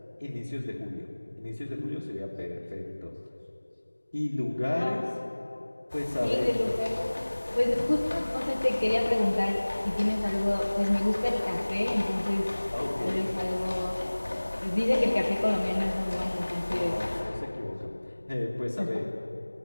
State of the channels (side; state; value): both; inverted; correlation -1.00